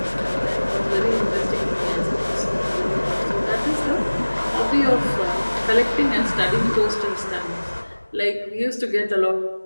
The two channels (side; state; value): both; inverted; correlation -1.00